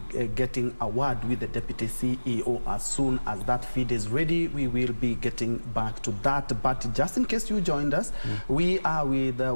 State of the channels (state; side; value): inverted; both; correlation -1.00